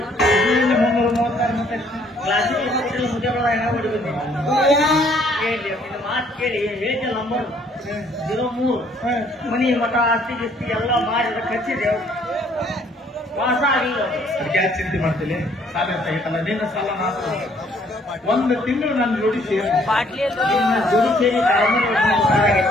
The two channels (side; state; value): both; normal; correlation 0.63